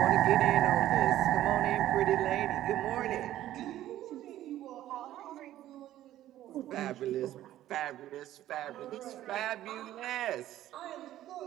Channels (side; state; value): left; quieter; 13.4 dB